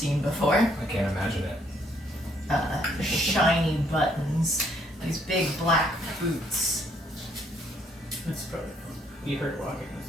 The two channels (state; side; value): normal; both; correlation 0.68